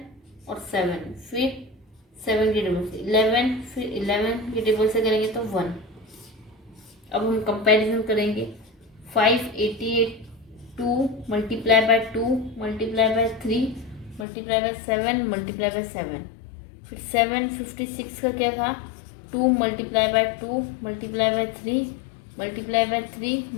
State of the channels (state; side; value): drops out; right; at 14.2 s